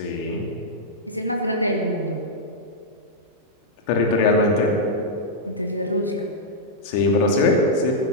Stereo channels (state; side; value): normal; both; correlation -0.07